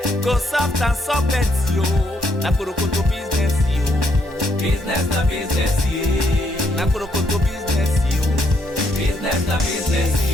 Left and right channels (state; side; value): normal; both; correlation 0.73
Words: go soft and soft, yo. Na Kurokoto business, yo. Business na business, yeah. Na Kurokoto business, yo. Business na business,